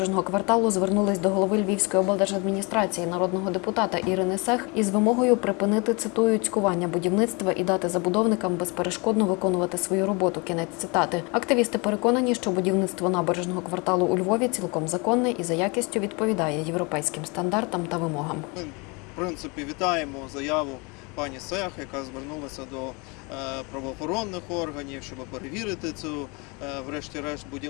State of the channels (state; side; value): quieter; right; 29.4 dB